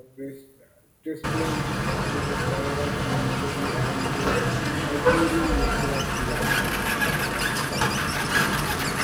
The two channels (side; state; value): both; identical; correlation 1.00